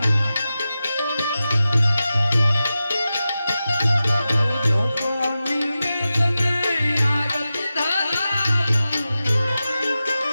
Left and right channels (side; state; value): both; inverted; correlation -0.93